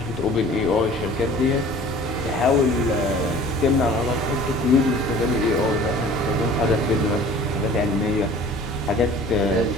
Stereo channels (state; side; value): normal; both; correlation 0.47